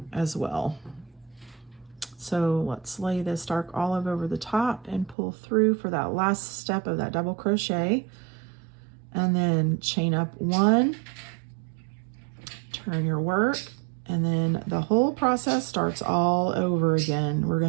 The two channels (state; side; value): drops out; left; at 5.2 s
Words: as well. So let's lay this dark olive over the top and pull through for that last step of that double crochet, and then chain up one, turn your work, and then the whole process starts all over again. We're